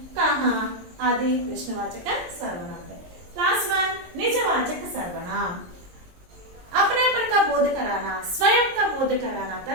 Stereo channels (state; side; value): late; left; 22 ms